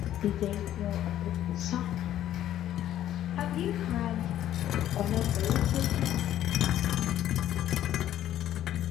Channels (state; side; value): quieter; right; 12.1 dB